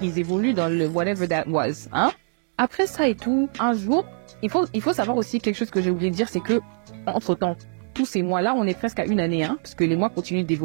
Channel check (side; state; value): left; silent; digital silence